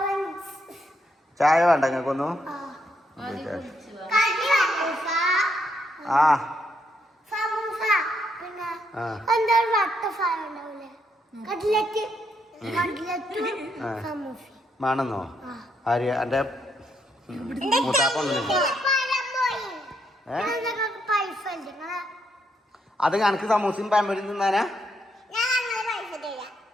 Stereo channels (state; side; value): normal; both; correlation 0.76